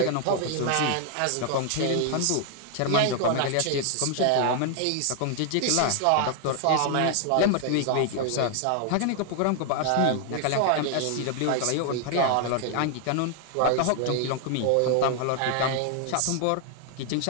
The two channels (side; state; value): both; different; correlation 0.00